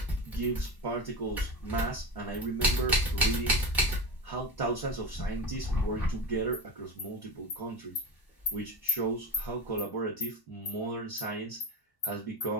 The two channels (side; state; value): right; late; 1.0 ms